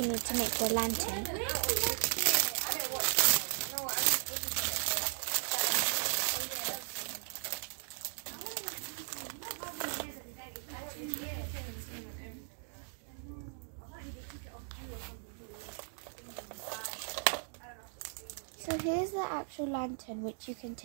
need to make the lantern. So here's the actual lantern, which you can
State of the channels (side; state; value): left; silent; digital silence